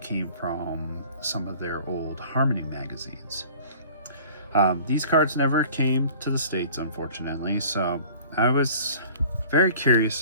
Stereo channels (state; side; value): inverted; both; correlation -0.47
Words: came from some of their old Harmony magazines. These cards never came to the States, unfortunately, so I was very